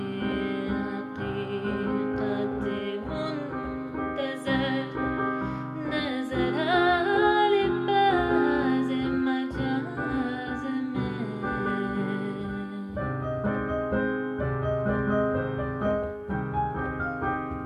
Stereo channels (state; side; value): identical; both; correlation 1.00